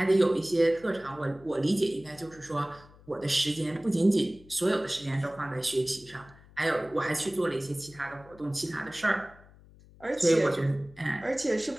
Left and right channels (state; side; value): noise; left; hum, 24 dB below the sound